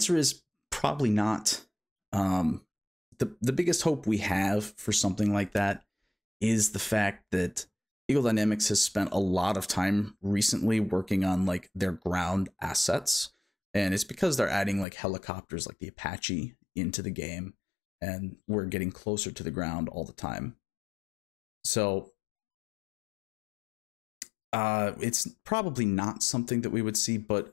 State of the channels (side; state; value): right; drops out; at 14.9 s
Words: is probably not. The biggest hope we have for something like that is the fact that Eagle Dynamics has spent a lot of time recently working on, like, their ground assets, and it's because they're adding, like, helicopters like the Apache into the game, and we're getting closer to the ground all the time. So it's probably not something that we would see,